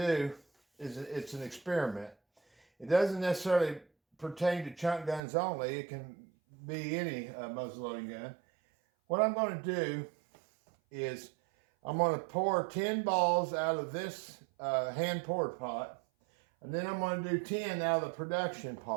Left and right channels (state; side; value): drops out; left; at 5.2 s